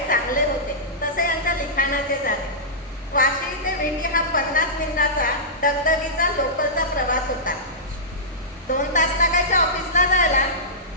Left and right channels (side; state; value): both; normal; correlation -0.16